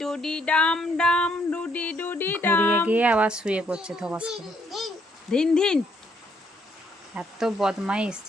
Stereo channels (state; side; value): normal; both; correlation 0.70